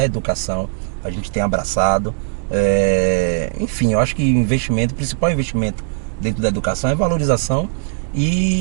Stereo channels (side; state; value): left; silent; digital silence